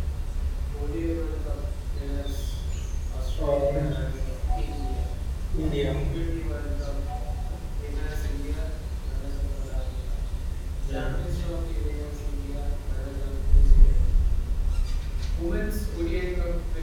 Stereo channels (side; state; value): both; identical; correlation 1.00